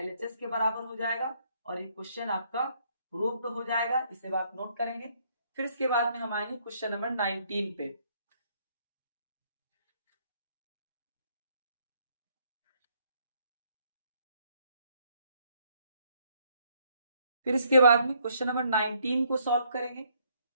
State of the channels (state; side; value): inverted; both; correlation -0.69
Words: के बराबर हो जाएगा और ये क्वेश्चन आपका प्रूव्ड हो जाएगा। इसे आप नोट करेंगे। फिर इसके बाद में हम आएंगे क्वेश्चन नंबर 19 पे। फिर इसके बाद में क्वेश्चन नंबर 19 को सॉल्व करेंगे।